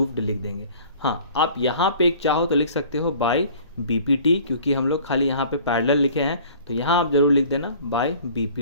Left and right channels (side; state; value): both; inverted; correlation -0.49